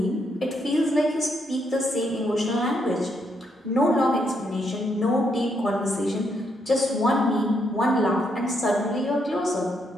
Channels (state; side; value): normal; both; correlation 0.76